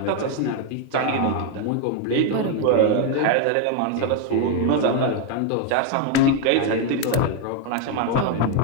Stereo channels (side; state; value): both; different; correlation 0.01